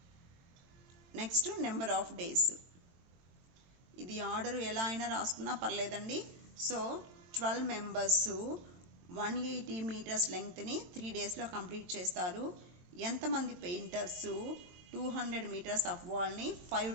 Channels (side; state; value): left; late; 22 ms